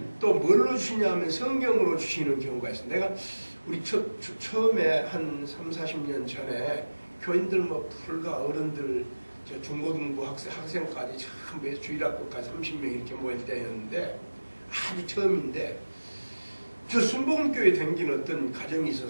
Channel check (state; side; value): inverted; both; correlation -1.00